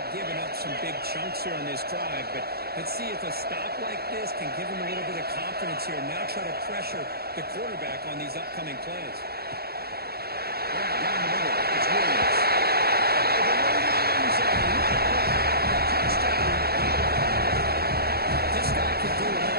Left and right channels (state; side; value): late; left; 0.46 ms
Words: giving up some big chunks here on this drive, but let's see if a stop like this can give them a little bit of confidence here. Now try to pressure the quarterback on these upcoming plays. Down the middle. It's Williams.